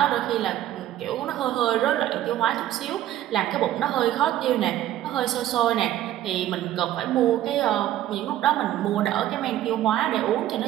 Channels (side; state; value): left; quieter; 13.0 dB